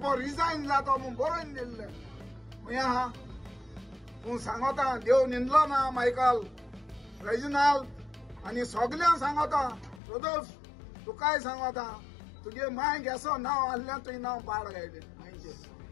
रिजायन जातो म्हूण बरोवन दिल्ले खंय आहा तूं सांगता देव निंदलो ना मायकल रेजिनाल्ड आनी सगळ्यांक सांगता रोदोल्फ तुकाय सांगता तुगे माय गेसो नांव आहल्यान तुवें नांव पाड गायलें मायचे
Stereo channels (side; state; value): right; drops out; at 10.0 s